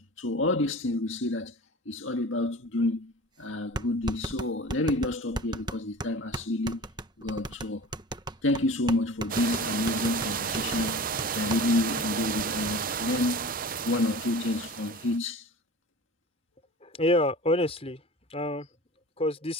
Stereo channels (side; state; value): both; normal; correlation 0.38